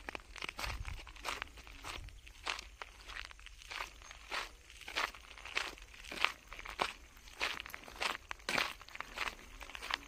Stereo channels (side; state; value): both; identical; correlation 1.00